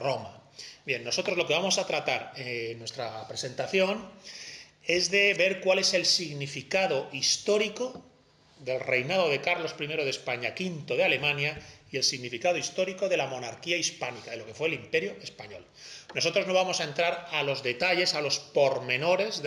Bien, nosotros lo que vamos a tratar en nuestra presentación es de ver cuál es el significado histórico del reinado de Carlos I de España, V de Alemania, y el significado histórico de la monarquía hispánica, de lo que fue el Imperio Español. Nosotros no vamos a entrar a los detalles, a los pormenores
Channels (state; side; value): identical; both; correlation 1.00